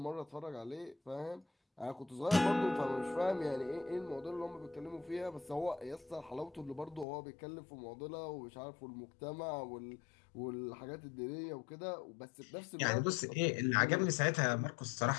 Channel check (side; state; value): right; drops out; at 7.1 s